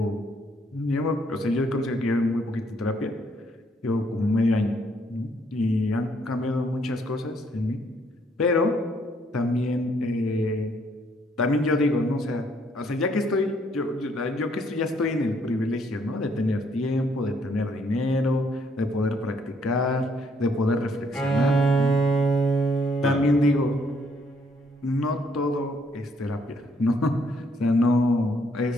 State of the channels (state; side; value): normal; both; correlation 0.69